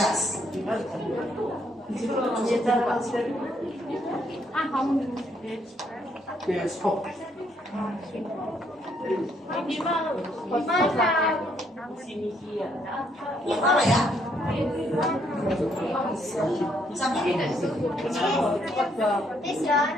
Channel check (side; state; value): both; normal; correlation 0.71